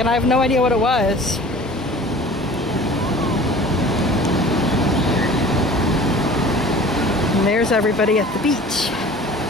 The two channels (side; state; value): both; normal; correlation 0.44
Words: I have no idea what it was. And there's everybody at the beach.